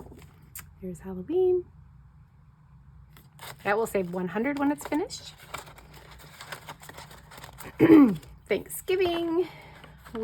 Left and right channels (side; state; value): both; identical; correlation 1.00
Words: Here's Halloween. That will save 100 when it's finished. Thanksgiving.